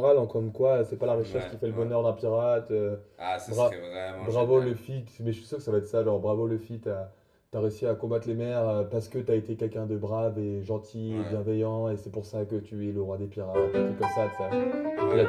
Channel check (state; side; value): identical; both; correlation 1.00